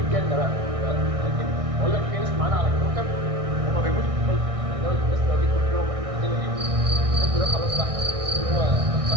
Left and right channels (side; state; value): left; late; 1.6 ms